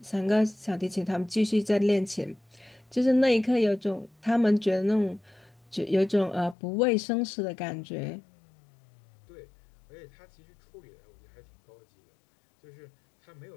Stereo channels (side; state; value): right; drops out; at 6.6 s